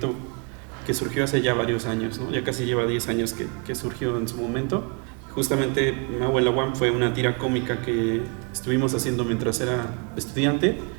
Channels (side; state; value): left; quieter; 35.0 dB